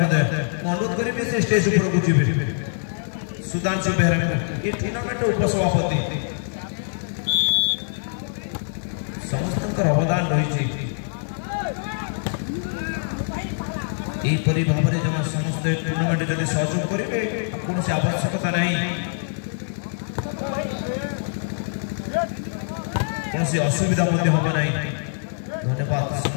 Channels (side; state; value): right; silent; digital silence